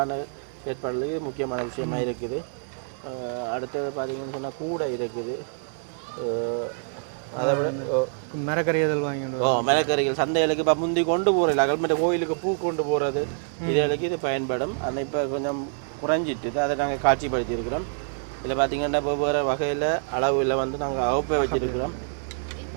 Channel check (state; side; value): silent; left; 61 dB below the other